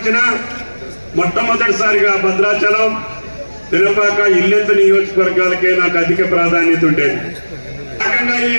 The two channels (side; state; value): both; inverted; correlation -1.00